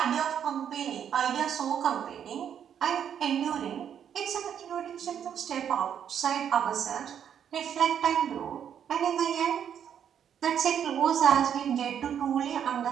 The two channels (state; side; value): quieter; left; 8.8 dB